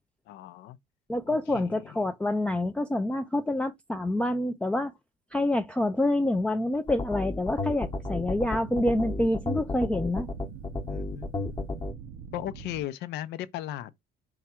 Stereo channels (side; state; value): both; normal; correlation 0.87